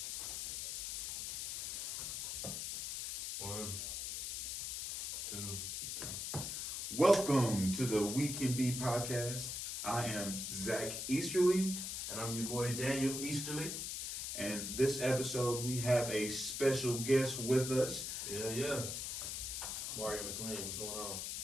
One, two. Welcome to the WeCannBe podcast. I am Zach Easterly. And I'm your boy Daniel Easterly. And this episode, we have a special guest with us. Yeah. Mario McLean, what's going on?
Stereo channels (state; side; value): noise; left; hiss, 3 dB below the sound